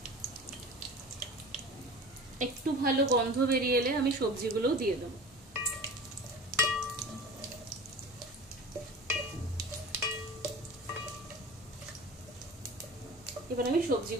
একটু ভালো গন্ধ বেরিয়ে এলে আমি সবজিগুলোও দিয়ে দেবো। এবার আমি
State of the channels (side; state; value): both; normal; correlation 0.37